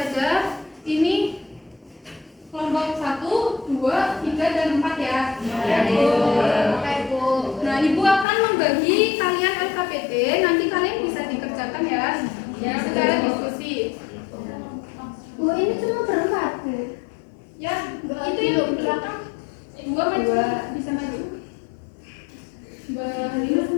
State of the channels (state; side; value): drops out; right; at 8.2 s